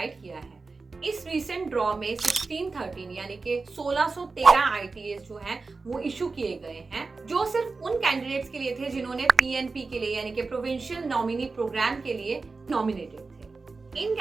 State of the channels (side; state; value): left; quieter; 4.0 dB